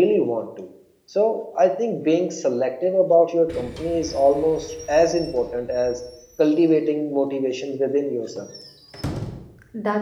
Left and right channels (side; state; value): both; identical; correlation 1.00